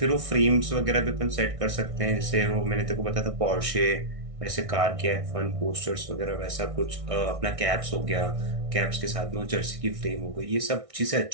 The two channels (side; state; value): left; late; 1.6 ms